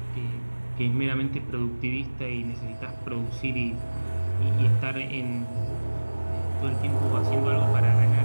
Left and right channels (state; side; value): inverted; both; correlation -1.00